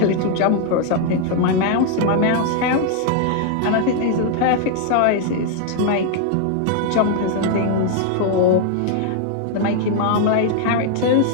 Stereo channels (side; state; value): both; different; correlation 0.00